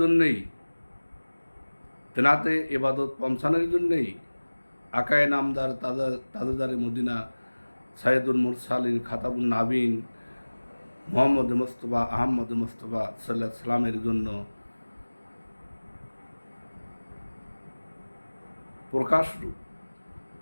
জন্যেই, তেনাতে ইবাদত পৌঁছানোর জন্যেই আকায়ে নামদার তাজদারে মদিনা সাইয়্যিদুল মুরসালিন খাতাবুন নাবিন মুহাম্মদ মুস্তাফা আহমদ মুস্তাফা সাল্লাল্লাহু আলাইহি সাল্লামের জন্য প্রকাশরূপ।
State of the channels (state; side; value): inverted; both; correlation -1.00